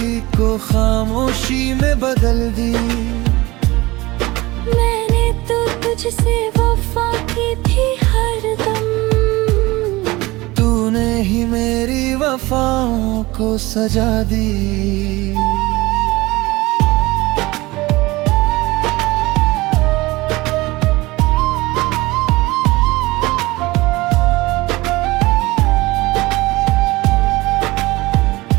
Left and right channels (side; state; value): left; quieter; 20.9 dB